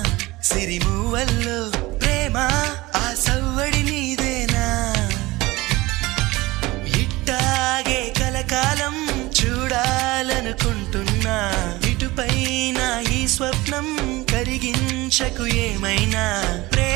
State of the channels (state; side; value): quieter; left; 20.4 dB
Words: సిరిమూవల్లో ప్రేమ ఆ సవ్వడి నీదేనా ఇట్టాగే కలకాలం చూడాలనుకుంటున్నా ఇటుపైన ఈ స్వప్నం కరిగించకు ఏమైనా